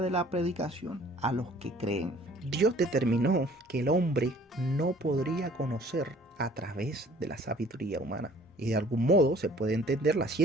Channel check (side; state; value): both; normal; correlation 0.54